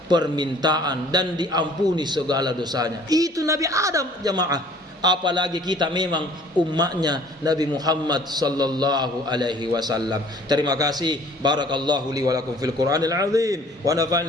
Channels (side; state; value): both; normal; correlation 0.53